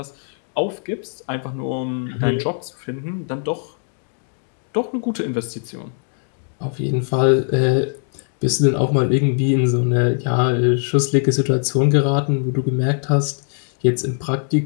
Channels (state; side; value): silent; right; 61 dB below the other